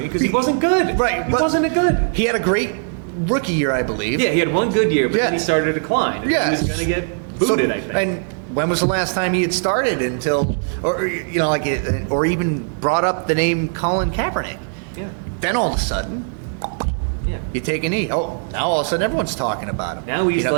because he wasn't good. Right. He wasn't good. He had a great rookie year, I believe. Yeah, he had one good year, but then he started to decline. And he was going to get booted, I think. And when was the last time he had started or even brought up the name Colin Kaepernick? Yeah. Then all of a sudden, you take a knee. Oh, now all of a sudden everyone's talking about him. Now he's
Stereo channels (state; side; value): silent; left; 62 dB below the other